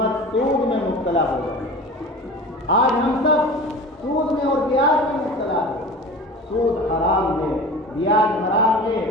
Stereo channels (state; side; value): normal; both; correlation 0.36